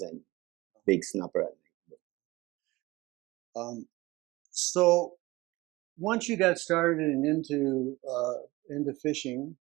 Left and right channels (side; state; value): left; quieter; 20.6 dB